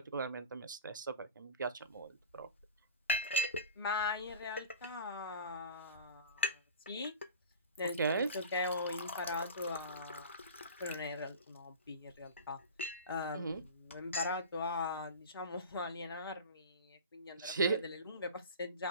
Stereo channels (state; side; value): inverted; both; correlation -0.34